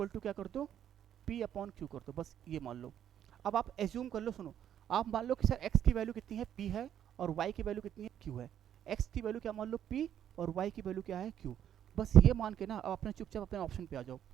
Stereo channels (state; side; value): quieter; left; 10.0 dB